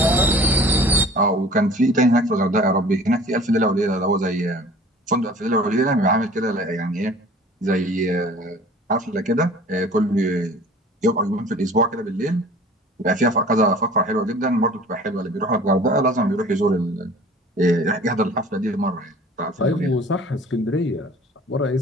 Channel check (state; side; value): normal; both; correlation 0.46